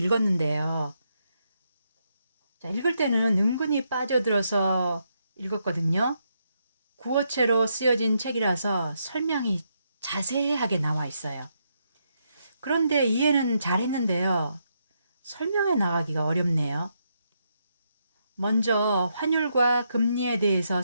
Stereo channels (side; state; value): both; inverted; correlation -0.79